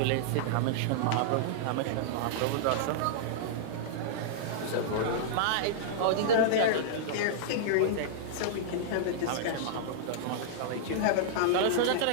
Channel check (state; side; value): different; both; correlation -0.02